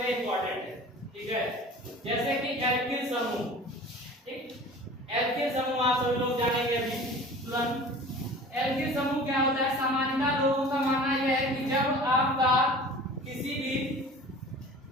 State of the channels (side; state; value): both; normal; correlation 0.41